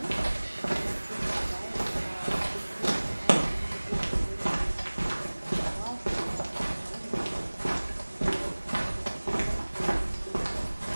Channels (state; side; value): inverted; both; correlation -1.00